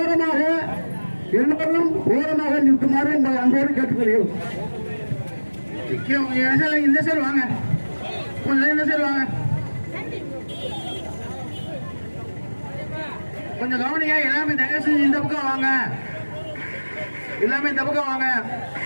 எல்லோரும் ஓரமாக நிற்குமாறு உங்களை அன்போடு கேட்டுக்கொள்கிறோம். இந்த சைடு வாங்க. கொஞ்சம் இந்த சைடு வாங்க. கொஞ்சம் கவனிங்க. எல்லாமே தயவு செஞ்சு இந்த பக்கம் வாங்க. எல்லாமே இந்த பக்கம் வாங்க.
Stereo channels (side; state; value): both; inverted; correlation -1.00